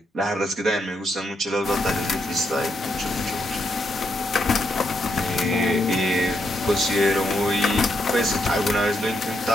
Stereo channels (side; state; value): both; normal; correlation 0.79